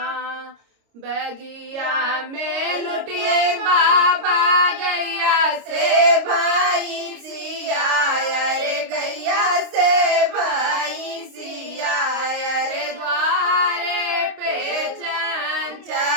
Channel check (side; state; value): left; late; 26 ms